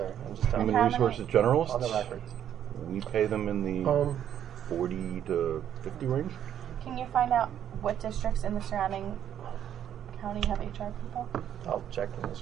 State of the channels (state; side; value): quieter; left; 10.0 dB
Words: I'm just telling Human you. resources generalists, On the record. we pay them in the 40 to 50 range. Can you find out what districts in the surrounding county have HR people? I'll check in this.